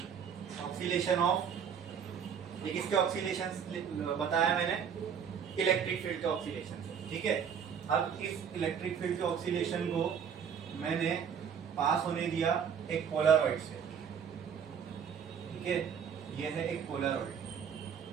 ये किसके ऑक्सीलेशन बताया मैंने, इलेक्ट्रिक फील्ड के ऑक्सीलेशन से, ठीक है। अब इस इलेक्ट्रिक फील्ड के ऑक्सीलेशन को मैंने पास होने दिया एक पोलरॉइड से, ठीक है। ये है एक पोलरॉइड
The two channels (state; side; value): quieter; left; 7.5 dB